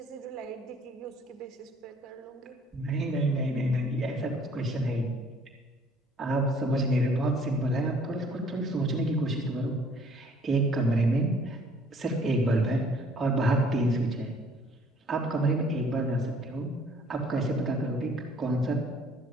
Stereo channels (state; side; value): normal; both; correlation 0.58